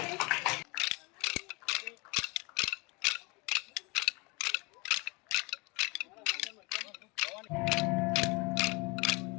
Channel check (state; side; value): quieter; right; 28.2 dB